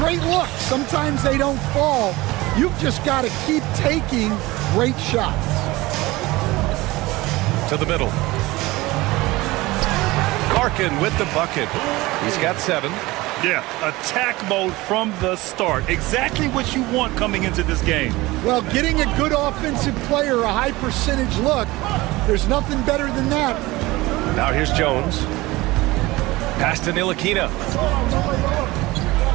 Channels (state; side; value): quieter; left; 20.3 dB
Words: look. Sometimes they don't fall. You've just got to keep taking great shots. To the middle. Larkin with the bucket. He's got 7. Yeah, attack mode from the start. Exactly what you want coming into this game. Well, getting a good offensive player a high percentage look, there's nothing better than that. Now here's Jones. Pass to Ntilikina.